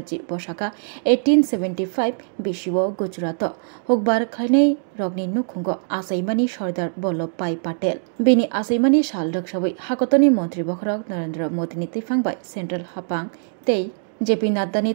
बशाखा 1875 बिशिव गुजरात हुकबार खायनाय रगनि नुखुंगो आसैमानि सरदार वल्लभभाई पाटेल बेनि आसैमानि साल रक्षावै हाकतनि मन्त्री बखरक नरेन्द्र मोदीनि तैफांबाय सेन्ट्रेल हापां तै जेपी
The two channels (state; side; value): silent; left; digital silence